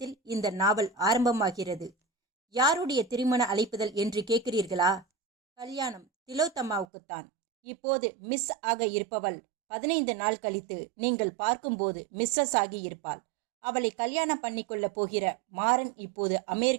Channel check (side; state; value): left; drops out; at 6.9 s